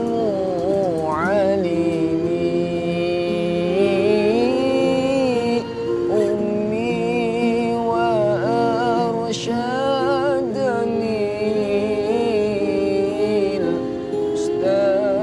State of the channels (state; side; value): identical; both; correlation 1.00